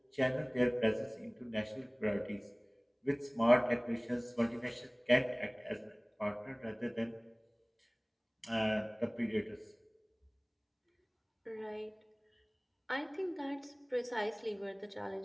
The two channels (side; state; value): both; identical; correlation 1.00